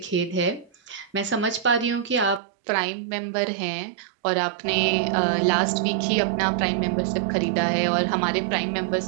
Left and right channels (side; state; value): left; drops out; at 2.4 s